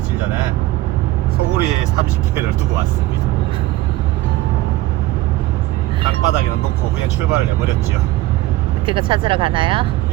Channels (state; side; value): quieter; left; 17.0 dB